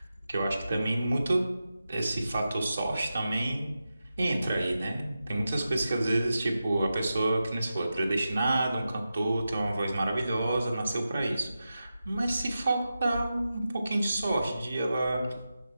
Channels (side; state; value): both; inverted; correlation -0.91